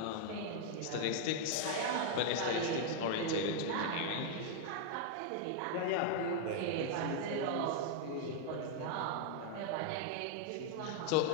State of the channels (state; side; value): different; both; correlation 0.00